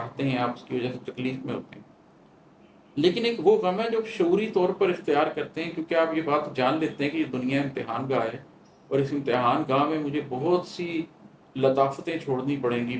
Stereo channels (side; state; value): both; identical; correlation 1.00